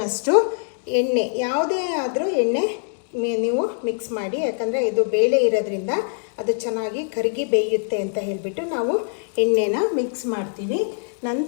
ಎಣ್ಣೆ, ಯಾವುದೇ ಆದರೂ ಎಣ್ಣೆ ನೀವು ಮಿಕ್ಸ್ ಮಾಡಿ. ಯಾಕಂದರೆ ಇದು ಬೇಳೆ ಇರೋದ್ರಿಂದ ಅದು ಚೆನ್ನಾಗಿ ಕರಗಿ ಬೇಯುತ್ತೆ ಅಂತ ಹೇಳಿಬಿಟ್ಟು ನಾವು ಎಣ್ಣೆನ ಮಿಕ್ಸ್ ಮಾಡ್ತೀವಿ.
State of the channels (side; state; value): right; silent; 61 dB below the other